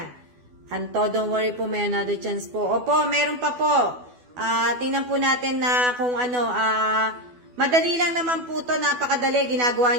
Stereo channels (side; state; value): left; late; 12 ms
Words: Anto, don't worry po, may another chance po. Opo, meron pa po. Tingnan po natin na kung ano, madali lang naman po to, napakadali. Ginagawa